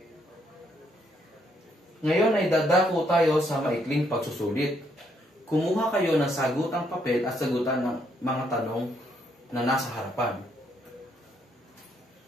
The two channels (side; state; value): both; normal; correlation 0.73